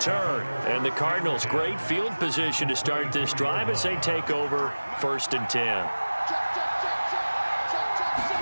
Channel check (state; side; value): inverted; both; correlation -1.00